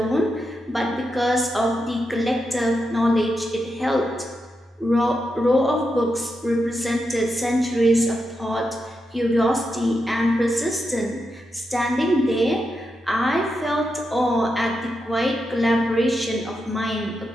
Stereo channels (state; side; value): normal; both; correlation 0.86